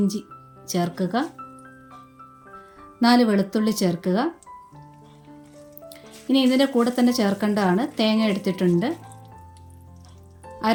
ചേർക്കുക. 4 വെളുത്തുള്ളി ചേർക്കുക. ഇനി ഇതിൻ്റെ കൂടെ തന്നെ ചേർക്കേണ്ടതാണ് തേങ്ങ എടുത്തിട്ടുണ്ട്.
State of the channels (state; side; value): identical; both; correlation 1.00